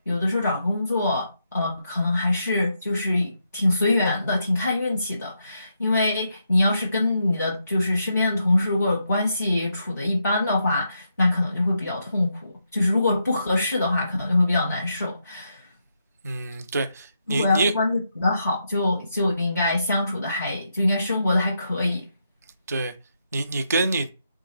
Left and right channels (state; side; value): inverted; both; correlation -0.82